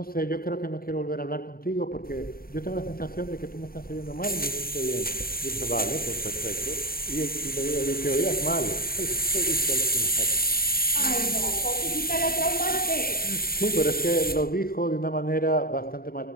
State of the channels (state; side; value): late; right; 0.43 ms